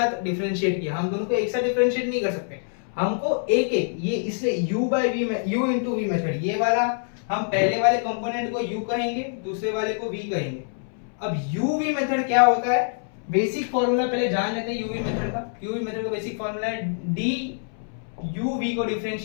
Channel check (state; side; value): silent; right; 62 dB below the other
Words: डिफरेंशिएट किया, हम दोनों को एक साथ डिफरेंशिएट नहीं कर सकते। हमको एक एक ये इसलिए u बाय v में u इंटू वी मेथड, ये वाला हम पहले वाले कंपोनेंट को u कहेंगे, दूसरे वाले को v कहेंगे। अब uv मेथड क्या होता है? बेसिक फॉर्मूला पहले जान लेते हैं uv मेथड का। uv मेथड का बेसिक फॉर्मूला है d uv को